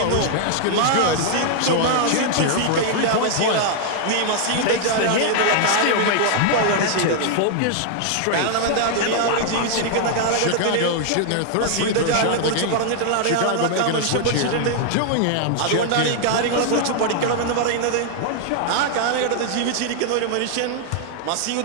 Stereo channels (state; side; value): different; both; correlation 0.00